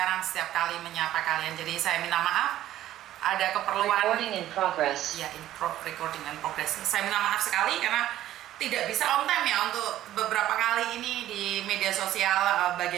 setiap kali menyapa kalian. Jadi saya minta maaf. Ada keperluan Recording in progress. Ya, recording in progress. Saya minta maaf sekali karena tidak bisa on time ya untuk beberapa kali ini di media sosial,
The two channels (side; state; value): left; quieter; 13.3 dB